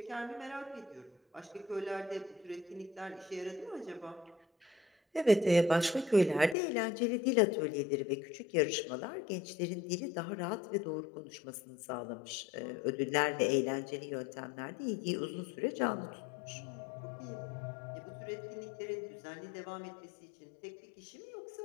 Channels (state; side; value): drops out; right; at 6.6 s